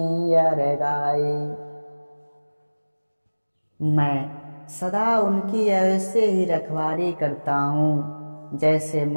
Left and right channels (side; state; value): both; inverted; correlation -1.00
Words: अर गाई। मैं सदा उनकी ऐसे ही रखवाली करता हूँ जैसे